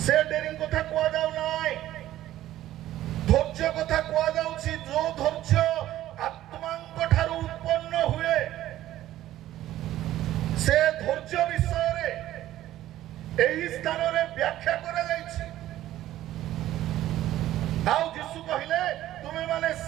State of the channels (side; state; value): left; quieter; 13.8 dB